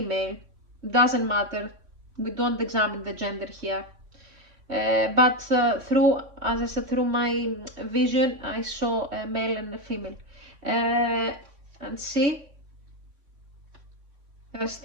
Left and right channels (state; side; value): late; left; 3.6 ms